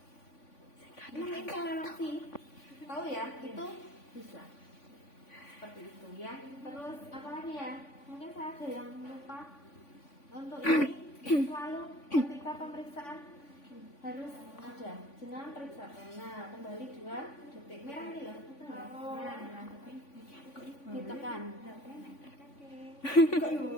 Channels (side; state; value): right; late; 3.5 ms